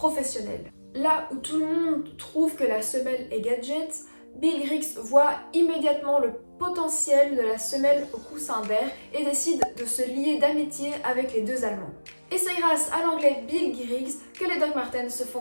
Là où tout le monde trouve que la semelle est gadget, Bill Griggs voit immédiatement le potentiel de la semelle au coussin d'air et décide de se lier d'amitié avec les deux Allemands. Et c'est grâce à l'anglais Bill Griggs que les Doc Martens se font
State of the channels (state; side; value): inverted; both; correlation -1.00